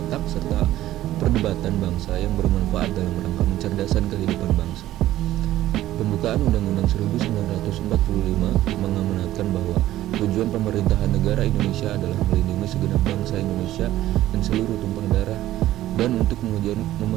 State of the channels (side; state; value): left; quieter; 14.2 dB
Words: serta perdebatan bangsa yang bermanfaat dalam rangka mencerdaskan kehidupan bangsa. Pembukaan Undang-Undang 1945 mengamanatkan bahwa tujuan pemerintahan negara Indonesia adalah melindungi segenap bangsa Indonesia dan seluruh tumpah darah, dan untuk